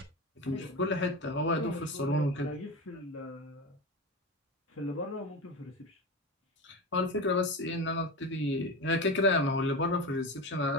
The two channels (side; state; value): both; normal; correlation 0.24